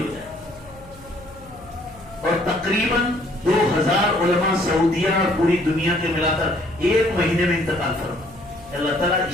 ہو جائے. اور تقریباً 2000 علماء سعودیہ اور پوری دنیا کے ملا کر 1 مہینے میں انتقال فرما. اللہ تعالیٰ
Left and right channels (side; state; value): left; noise; hum, 22 dB below the sound